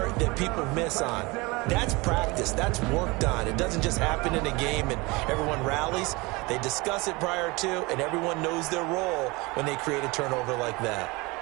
that people miss on. That's practice. That's worked on. It doesn't just happen in a game and everyone rallies. They discuss it prior to, and everyone knows their role when they create a turnover like that.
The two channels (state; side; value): quieter; left; 24.5 dB